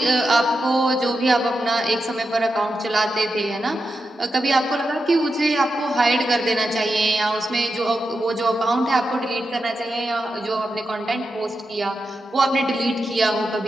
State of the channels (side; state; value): both; normal; correlation 0.89